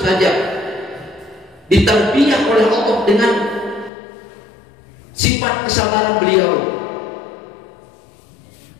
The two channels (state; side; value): drops out; right; at 3.9 s